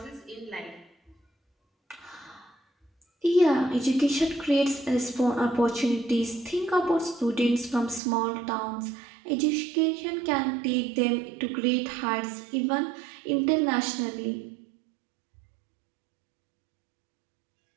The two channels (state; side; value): drops out; left; at 8.0 s